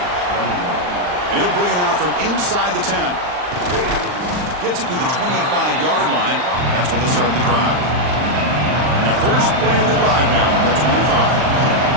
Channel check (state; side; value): late; left; 39 ms